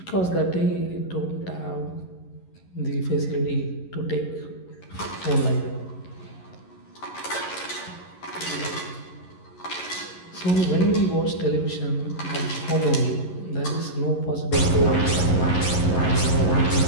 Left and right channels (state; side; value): late; right; 11 ms